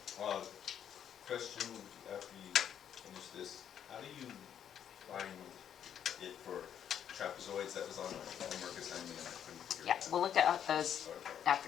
question after you finish this, how do you find it for trapezoids? That was on my homework assignment and I couldn't figure it out. we'll look at those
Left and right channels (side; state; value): right; quieter; 9.2 dB